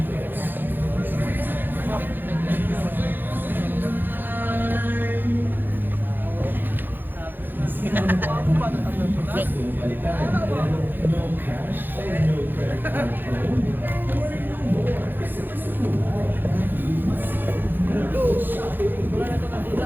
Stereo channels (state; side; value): late; left; 0.093 ms